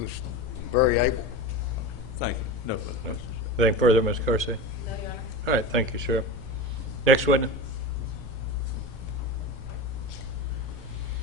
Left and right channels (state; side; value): normal; both; correlation 0.27